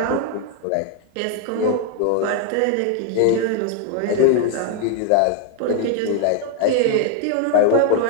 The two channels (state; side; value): different; both; correlation 0.00